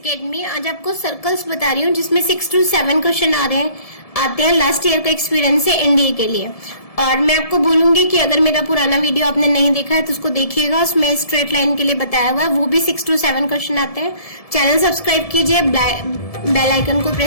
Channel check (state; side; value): late; right; 1.7 ms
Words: आज आपको सर्कल्स बता रही हूँ जिसमें 6 to 7 क्वेश्चन आते हैं लास्ट ईयर का एक्सपीरियंस है एनडीए के लिए। और मैं आपको बोलूंगी कि अगर मेरा पुराना वीडियो आपने नहीं देखा है तो उसको देखिएगा, उसमें स्ट्रेट लाइन के लिए बताया हुआ है, वो भी 6 to 7 क्वेश्चन आते हैं। चैनल सब्सक्राइब कीजिए, बेल आइकन को